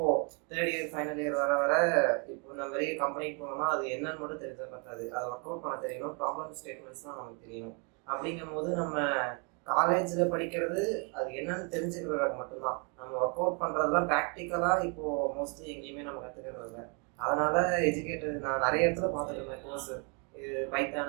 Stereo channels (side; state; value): left; quieter; 35.8 dB